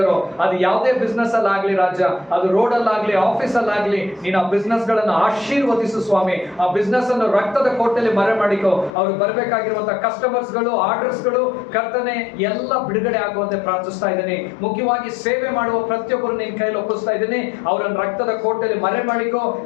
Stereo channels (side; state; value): right; drops out; at 8.9 s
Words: ಅದು ಯಾವುದೇ ಬಿಸ್ನೆಸ್ ಅಲ್ಲಾಗ್ಲಿ ರಾಜ, ಅದು ರೋಡ್ ಅಲ್ಲಾಗ್ಲಿ ಆಫೀಸ್ ಅಲ್ಲಾಗ್ಲಿ, ನೀನು ಆ ಬಿಸ್ನೆಸ್ ಗಳನ್ನು ಆಶೀರ್ವದಿಸು ಸ್ವಾಮಿ. ಆ ಬಿಸ್ನೆಸ್ ಅನ್ನು ರಕ್ತದ ಕೋಟೆಯಲ್ಲಿ ಮರೆ ಮಾಡಿಕೋ. ಅವ್ರಿಗೆ ಬರಬೇಕಾಗಿರುವಂತಹ ಕಸ್ಟಮರ್ಸ್ ಗಳು, ಆರ್ಡರ್ಸ್ ಗಳು ಕರ್ತನೆ ಎಲ್ಲ ಬಿಡುಗಡೆ ಆಗುವಂತೆ ಪ್ರಾರ್ಥಿಸ್ತಾ ಇದ್ದೀನಿ. ಮುಖ್ಯವಾಗಿ ಸೇವೆ ಮಾಡುವ ಪ್ರತಿಯೊಬ್ಬರು ನಿನ್ನ ಕೈಯಲ್ಲಿ ಒಪ್ಪಿಸ್ತಾ ಇದ್ದೀನಿ. ಅವರನ್ನು ರಕ್ತದ ಕೋಟೆಯಲ್ಲಿ ಮರೆ ಮಾಡಿಕೋ.